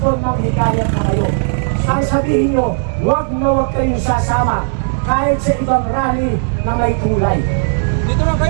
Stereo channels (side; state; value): left; silent; 67 dB below the other